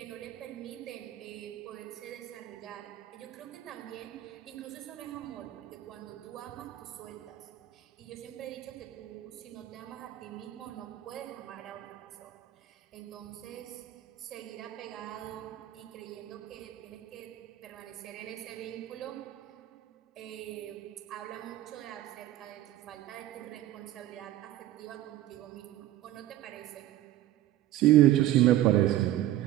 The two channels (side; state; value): left; quieter; 14.0 dB